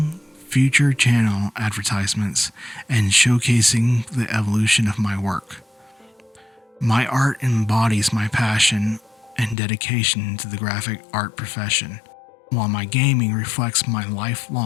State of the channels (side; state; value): right; drops out; at 9.6 s